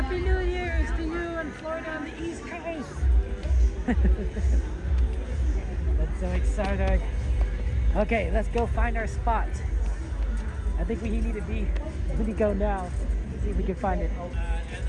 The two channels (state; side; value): identical; both; correlation 1.00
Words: New Year's to you in Florida on the East Coast. That's so exciting. Okay, let's go find our spot. I think we need to go now. See if we can find it.